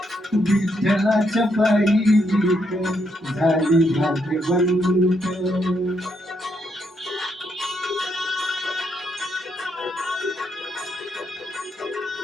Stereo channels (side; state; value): both; normal; correlation 0.77